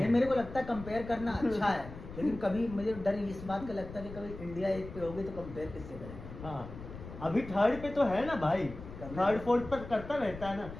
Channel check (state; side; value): noise; left; rumble, 13 dB below the sound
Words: मेरे को लगता है कंपेयर करना अच्छा है, लेकिन कभी मुझे डर इस बात का लगता है कि कभी इंडिया एक पे होगी तो कंपेयर किससे करेंगे। हाँ अभी थर्ड पे तो है ना भाई, थर्ड फोर्थ पर करता रहता है ना,